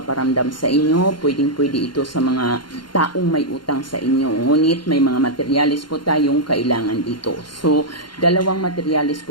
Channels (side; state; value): right; late; 0.72 ms